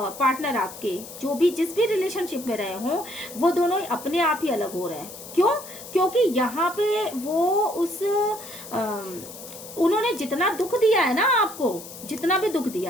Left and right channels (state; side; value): noise; left; hiss, 14 dB below the sound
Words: आपके जो भी जिस भी रिलेशनशिप में रहे हों, वो दोनों अपने आप ही अलग हो रहे हैं। क्यों? क्योंकि यहाँ पे वो उन्होंने जितना दुख दिया है ना आपको, जितना भी दुख